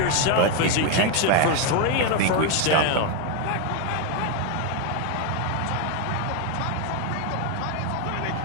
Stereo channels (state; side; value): different; both; correlation 0.01